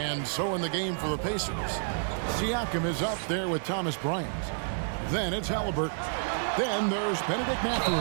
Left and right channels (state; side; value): silent; left; 56 dB below the other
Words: so in the game for the Pacers, Siakam is up there with Thomas Bryant. Then it's Halliburton. Then there's Benedict